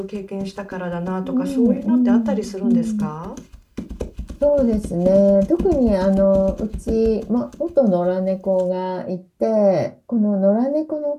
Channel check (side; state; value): both; identical; correlation 1.00